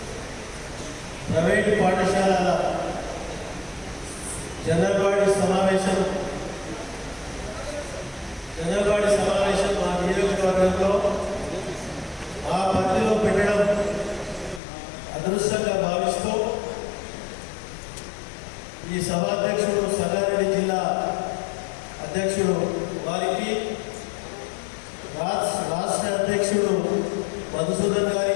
ప్రైవేటు పాఠశాలల general body సమావేశం మా నియోజకవర్గంలో ఆ పరిధిలో పెట్టడం అదృష్టంగా భావిస్తూ ఈ సభాధ్యక్షుడు సంగారెడ్డి జిల్లా అధ్యక్షుడు వారికి, రాష్ట్ర అధ్యక్షుడు మధుసూదన్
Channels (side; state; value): right; drops out; at 14.6 s